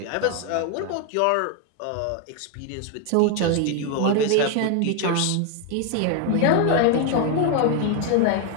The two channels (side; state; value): both; different; correlation 0.01